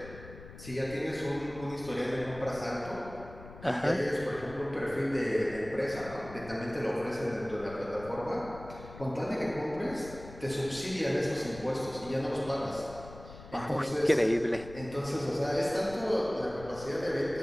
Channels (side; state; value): left; noise; rumble, 15 dB below the sound